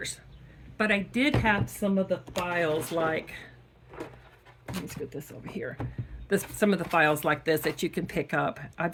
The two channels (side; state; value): both; identical; correlation 1.00